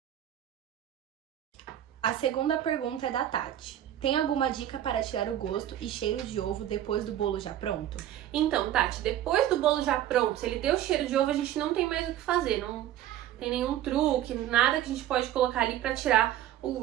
A segunda pergunta é da Tati. Tem alguma dica para tirar o gosto e cheiro de ovo depois do bolo já pronto? Então, Tati, depois do bolo já pronto, se ele deu cheiro de ovo, a gente não tem mais o que fazer. Não tem nenhum truque, nada que a gente pode colocar ali pra tirar o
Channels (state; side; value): quieter; left; 12.1 dB